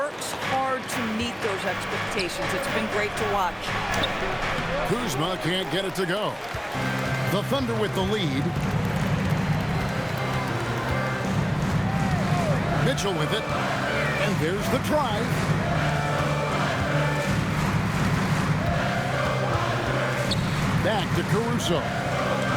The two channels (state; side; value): identical; both; correlation 1.00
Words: hard to meet those expectations. It's been great to watch. Kuzma can't get it to go. The Thunder with the lead. Mitchell with it. And there's the try. Back to Caruso.